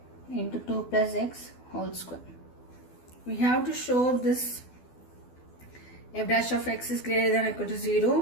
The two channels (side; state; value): right; late; 12 ms